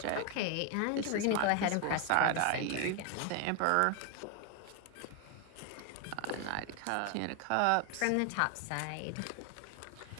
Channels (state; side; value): different; both; correlation 0.01